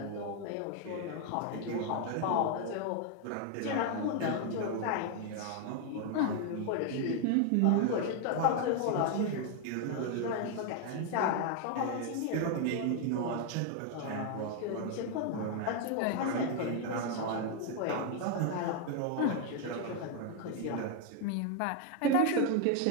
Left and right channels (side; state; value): both; different; correlation 0.00